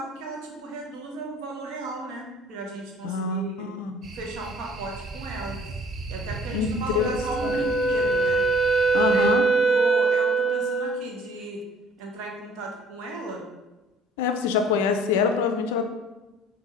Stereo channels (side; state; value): both; normal; correlation 0.54